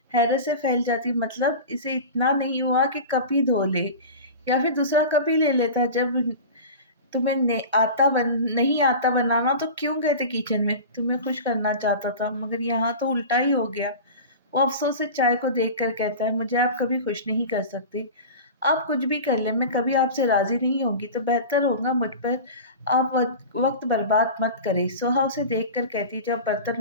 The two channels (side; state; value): both; inverted; correlation -0.32